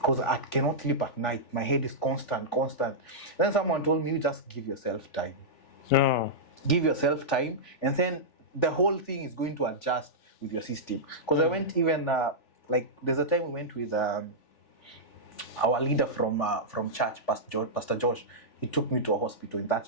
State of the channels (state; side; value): late; right; 3.4 ms